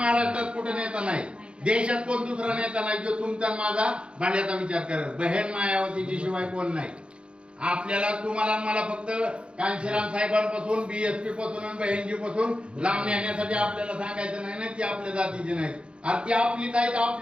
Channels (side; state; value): left; late; 0.057 ms